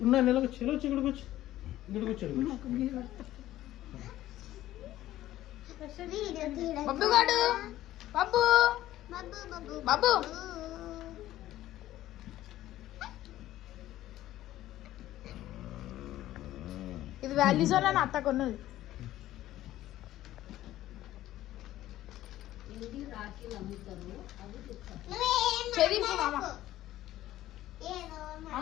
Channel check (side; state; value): right; quieter; 14.3 dB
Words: ఉన్నా నెలకు చెలు వచ్చి ఇక్కడ కూర్చో, ఇక్కడ కూర్చోడు. బబ్బు గాడు బబ్బు బాబు ఇది వాల్యూజోన్ అని అత్త కొన్నది. చెదింపు మామ,